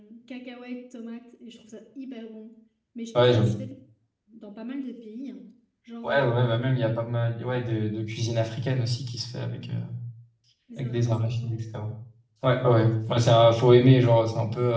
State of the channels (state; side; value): identical; both; correlation 1.00